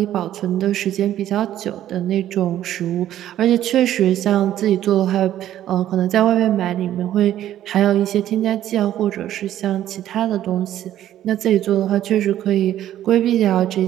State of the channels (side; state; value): left; quieter; 12.1 dB